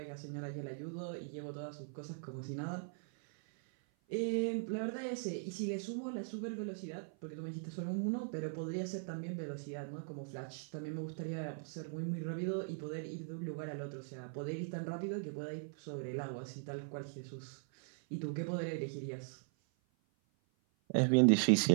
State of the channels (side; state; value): left; silent; 51 dB below the other